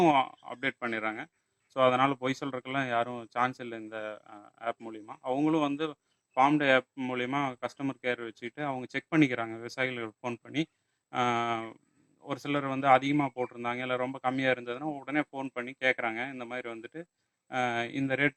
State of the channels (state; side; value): identical; both; correlation 1.00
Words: அப்டேட் பண்ணிடுறாங்க. ஸோ அதனால பொய் சொல்றதுக்கெல்லாம் யாரும் சான்ஸ் இல்ல இந்த ஆப் மூலியமா. அவங்களும் வந்து ஃபார்ம் டே ஆப் மூலியமா கஸ்டமர் கேர் வச்சுக்கிட்டு அவங்க செக் பண்ணிக்கிறாங்க. விவசாயிகளுக்கு ஃபோன் பண்ணி. அ ஒரு சிலர் வந்து அதிகமா போட்டிருந்தாங்க, இல்ல ரொம்ப கம்மியா இருந்ததுன்னா, உடனே ஃபோன் பண்ணி கேட்குறாங்க. இந்த மாரி வந்துட்டு இந்த